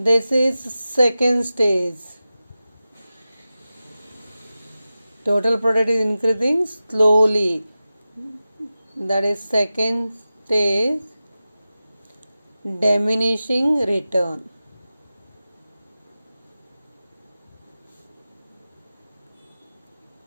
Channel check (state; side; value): inverted; both; correlation -0.94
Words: is second stage. Total product is increasing slowly. That is second stage, diminishing return.